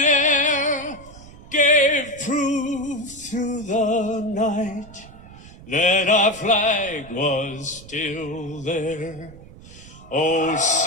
air, gave proof through the night that our flag was still there. Oh,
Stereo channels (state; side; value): noise; right; rumble, 19 dB below the sound